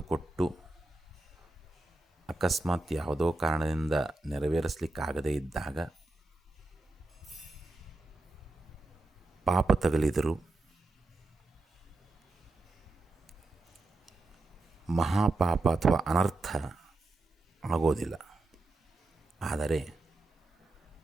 ಕೊಟ್ಟು ಅಕಸ್ಮಾತ್ ಯಾವುದೋ ಕಾರಣದಿಂದ ನೆರವೇರಿಸಲಿಕ್ಕಾಗದೇ ಇದ್ದಾಗ ಪಾಪ ತಗಲಿದರೂ ಮಹಾಪಾಪ ಅಥವಾ ಅನರ್ಥ ಆಗೋದಿಲ್ಲ. ಆದರೆ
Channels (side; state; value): left; quieter; 3.1 dB